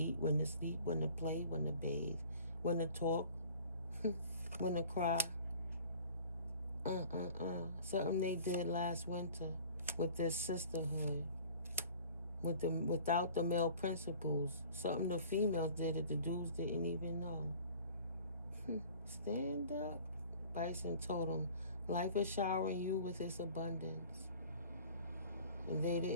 when to sleep, when to play, when to bathe, when to talk, when to cry. Something they did last winter with this sisterhood, without the male principles. Something the females did that the dudes didn't even know. Stand up. Bison told them, life is showering you with its abundance. And they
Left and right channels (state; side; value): inverted; both; correlation -0.47